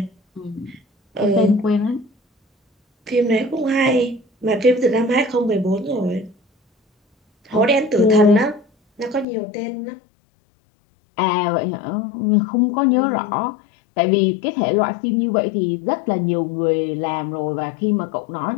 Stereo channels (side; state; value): right; drops out; at 9.2 s